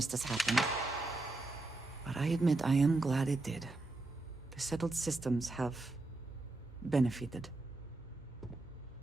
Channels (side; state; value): left; quieter; 3.0 dB